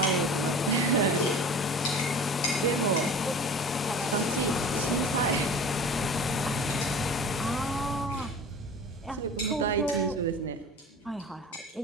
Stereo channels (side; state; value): both; normal; correlation 0.39